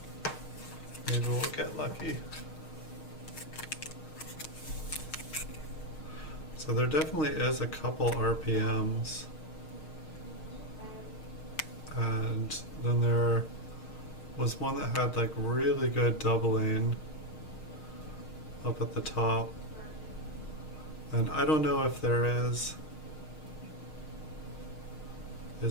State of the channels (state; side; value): late; right; 6.5 ms